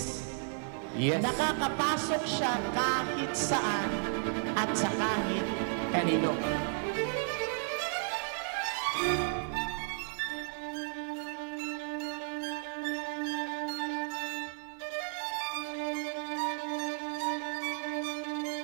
Yes. Nakakapasok siya kahit saan at sa kahit kanino.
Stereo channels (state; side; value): silent; left; 55 dB below the other